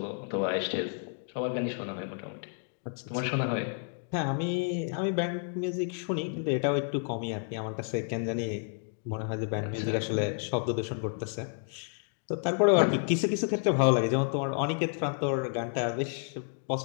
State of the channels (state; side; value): silent; right; 57 dB below the other